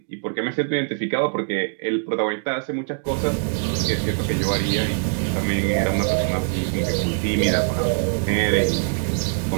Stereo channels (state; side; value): silent; left; digital silence